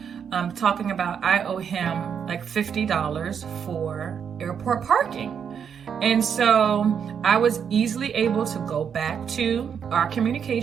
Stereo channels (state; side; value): quieter; left; 7.5 dB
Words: talking about I owe him like $50 for airport parking. And so I was easily able to go back to our